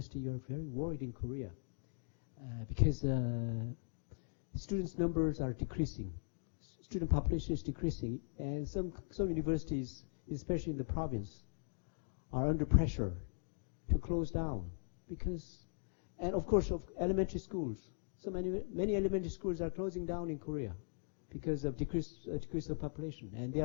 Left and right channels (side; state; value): right; silent; digital silence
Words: you're very worried in Korea. Because students' numbers are decreasing. Student population is decreasing. And some universities, especially in the province, are under pressure to close down. And of course, of elementary schools. So many elementary schools are closing down in Korea because of decrease of population. And they